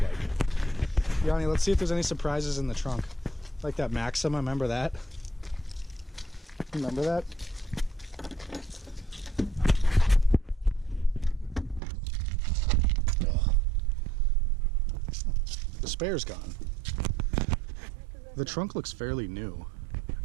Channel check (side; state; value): left; drops out; at 11.8 s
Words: like. Yanni, let's see if there's any surprises in the trunk. Like that Maxima, remember that? Remember that? Ugh. The spare's gone. The trunk looks fairly new.